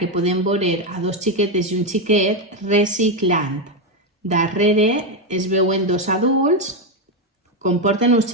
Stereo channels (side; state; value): both; normal; correlation 0.07